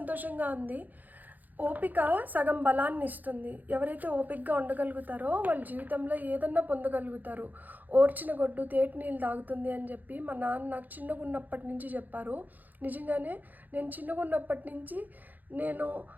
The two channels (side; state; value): left; late; 0.083 ms